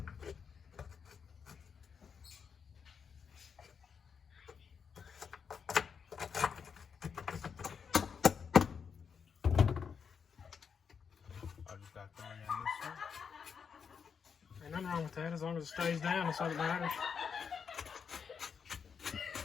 I just got 3 in this one. Ain't nothing wrong with that as long as it stays down, that's all that matters.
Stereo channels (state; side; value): quieter; right; 6.5 dB